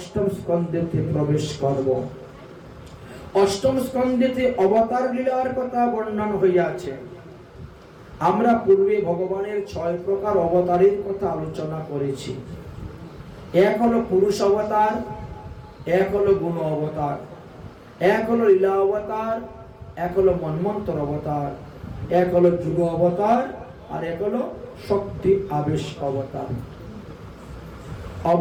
স্কন্ধেতে প্রবেশ করব। অষ্টম স্কন্ধেতে অবতার লীলার কথা বর্ণন হইয়াছে। আমরা পূর্বে ভগবানের 6 প্রকার অবতারের কথা আলোচনা করেছি। এক হলো পুরুষ অবতার, এক হলো গুণ অবতার, এক হলো লীলা অবতার, এক হলো মন্বন্তর অবতার, এক হলো যুগ অবতার, আর এক হলো শক্তি আবেশ অবতার।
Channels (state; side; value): identical; both; correlation 1.00